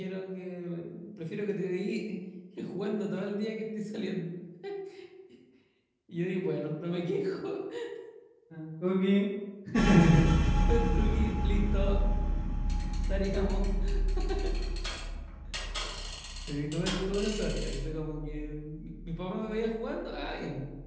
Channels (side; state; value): both; identical; correlation 1.00